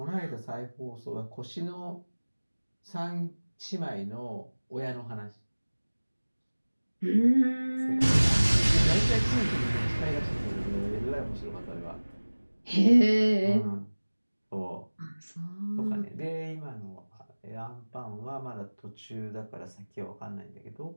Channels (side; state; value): both; inverted; correlation -1.00